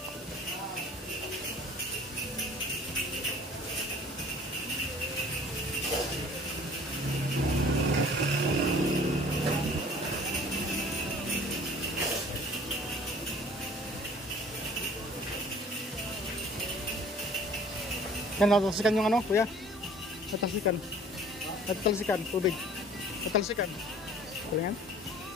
Yan, natalsikan yung ano, kuya. Natalsikan, tubig. Natalsikan. Kulingan.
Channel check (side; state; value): both; normal; correlation 0.50